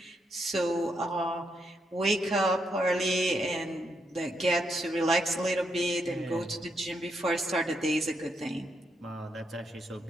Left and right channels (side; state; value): both; normal; correlation 0.79